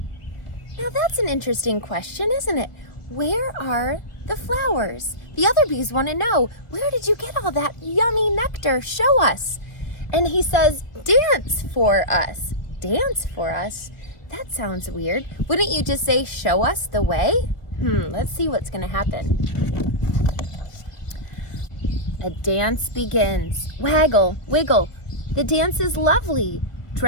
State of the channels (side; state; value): right; late; 1.4 ms